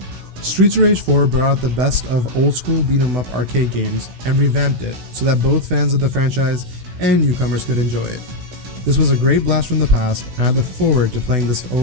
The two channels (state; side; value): late; left; 16 ms